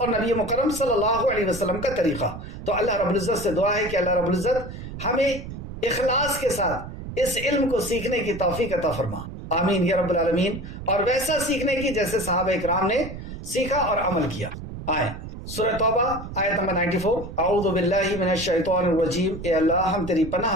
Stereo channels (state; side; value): noise; right; rumble, 10 dB below the sound